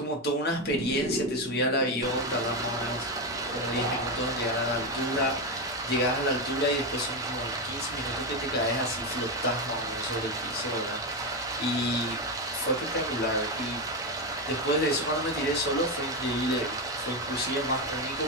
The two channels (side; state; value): both; normal; correlation 0.11